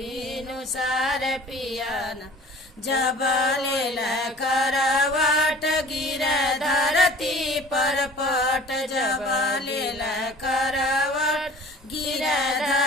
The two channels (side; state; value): both; normal; correlation 0.47